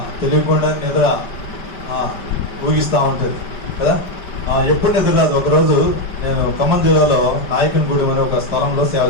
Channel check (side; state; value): right; late; 5.2 ms